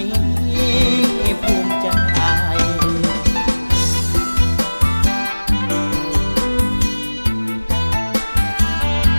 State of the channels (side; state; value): both; inverted; correlation -1.00